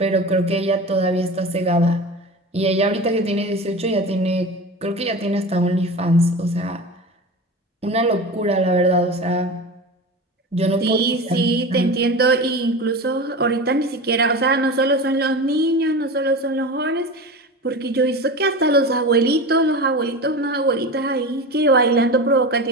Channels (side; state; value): both; normal; correlation 0.29